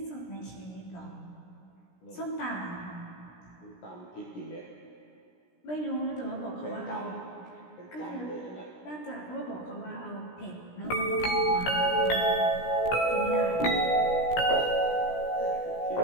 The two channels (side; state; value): right; late; 17 ms